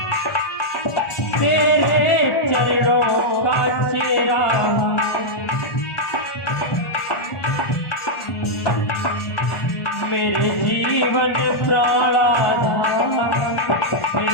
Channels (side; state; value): right; late; 1.4 ms